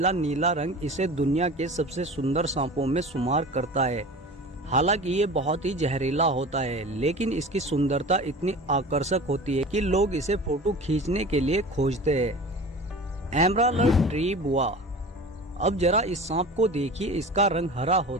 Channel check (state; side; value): normal; both; correlation 0.37